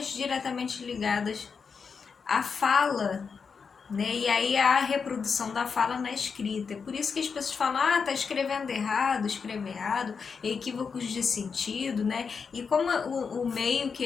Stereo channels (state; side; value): quieter; right; 5.7 dB